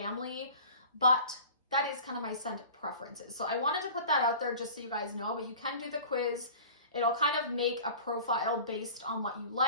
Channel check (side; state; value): both; inverted; correlation -0.41